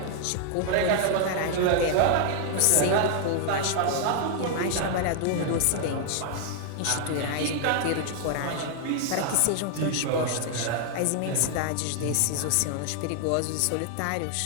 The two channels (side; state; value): both; different; correlation 0.00